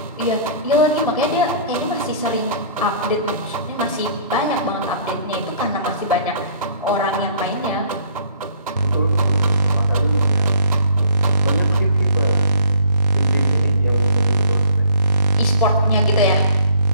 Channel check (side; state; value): both; inverted; correlation -0.56